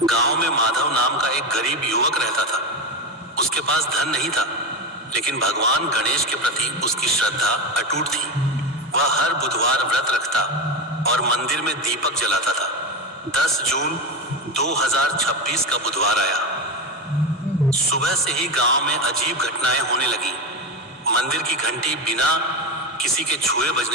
गांव में माधव नाम का एक गरीब युवक रहता था। उसके पास धन नहीं था, लेकिन भगवान गणेश के प्रति उसकी श्रद्धा अटूट थी। वह हर बुधवार व्रत रखता और मंदिर में दीपक जलाता था। 10 जून 2026 का बुधवार आया। सुबह से ही गांव में अजीब घटनाएं होने लगी। मंदिर की घंटी बिना किसी के छुए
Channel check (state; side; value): normal; both; correlation 0.18